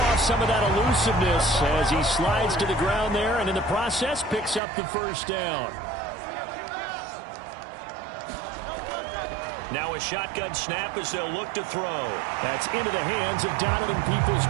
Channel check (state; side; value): drops out; left; at 4.6 s